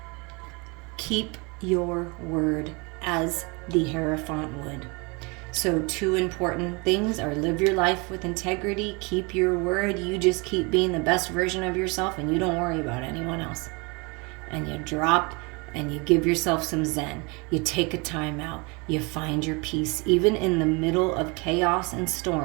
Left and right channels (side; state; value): left; quieter; 28.8 dB